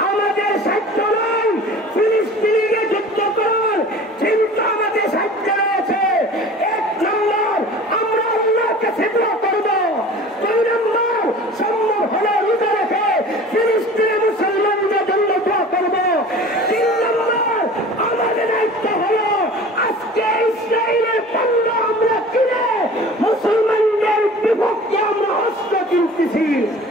আমাদের সাধ্য নয়, ফিলিস্তিনিকে যুদ্ধ করার চিন্তা আমাদের সাধ্য রয়েছে। 1 নম্বর আমরা আল্লাহর কাছে দোয়া করব, 2 নম্বর সম্ভব হলে রোজা রেখে ফিলিস্তিনি মুসলমানদের জন্য দোয়া করব, 3 নম্বর আমাদের দায়িত্ব হলো আজকে ইসরায়েলের পণ্য আমরা কিনে মুসলমানদের বিপক্ষে আমরা অস্ত্র কিনতেছি।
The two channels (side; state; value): both; normal; correlation 0.42